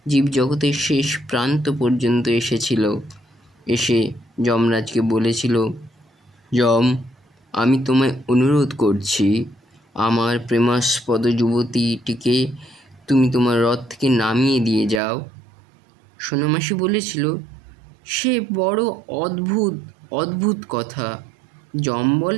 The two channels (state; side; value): drops out; left; at 15.0 s